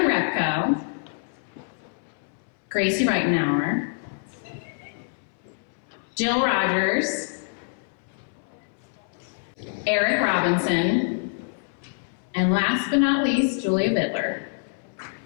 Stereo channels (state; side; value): silent; right; 59 dB below the other